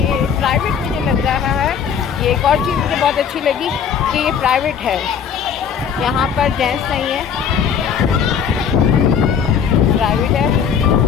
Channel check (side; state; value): right; quieter; 7.4 dB